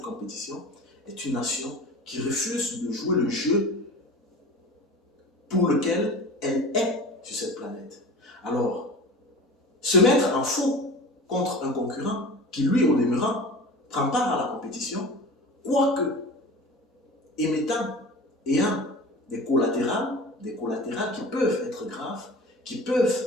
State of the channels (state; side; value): normal; both; correlation 0.35